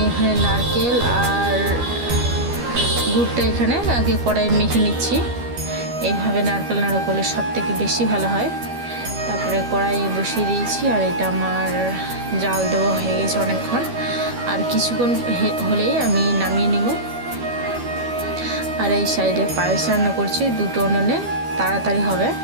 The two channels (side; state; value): left; late; 12 ms